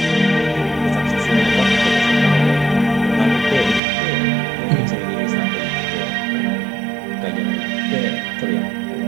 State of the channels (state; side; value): drops out; left; at 3.8 s